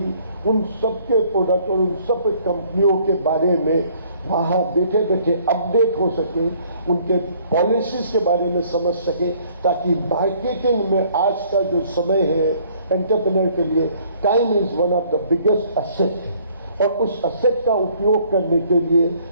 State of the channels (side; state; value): both; inverted; correlation -0.60